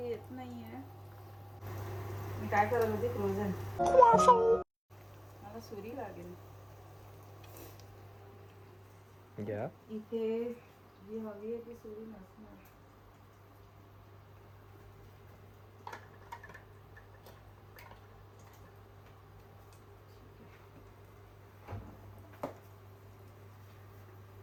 नाहीये. मी काय करत होते, फ्रोझन. मला सुरी लागेल. घ्या. इथे जी हवी आहे ती सुरी नसणार.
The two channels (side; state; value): both; identical; correlation 1.00